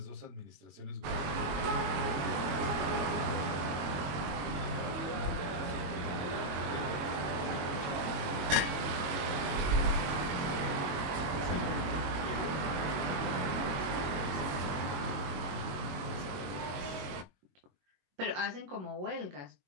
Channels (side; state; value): left; late; 22 ms